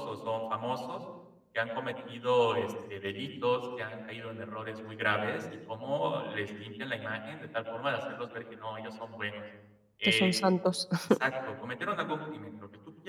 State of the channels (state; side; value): identical; both; correlation 1.00